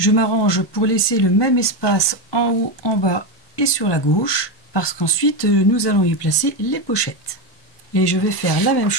m'arrange pour laisser le même espace en haut, en bas et sur la gauche. parce qu'ensuite nous allons y placer les pochettes. Et je vais faire la même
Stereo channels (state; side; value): late; right; 1.2 ms